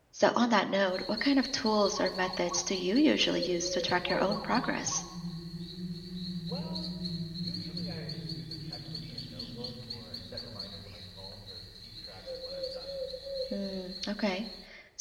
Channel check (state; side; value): identical; both; correlation 1.00